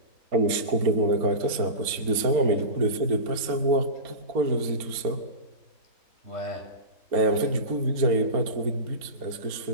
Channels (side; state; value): left; late; 4.3 ms